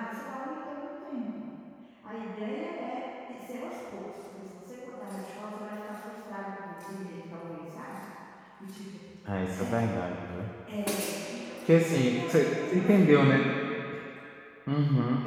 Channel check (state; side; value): identical; both; correlation 1.00